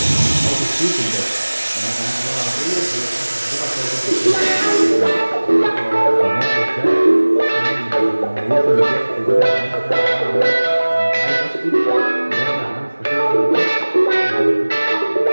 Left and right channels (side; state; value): both; inverted; correlation -1.00